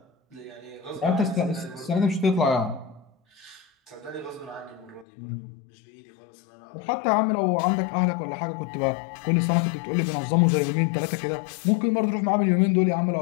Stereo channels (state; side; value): drops out; right; at 5.1 s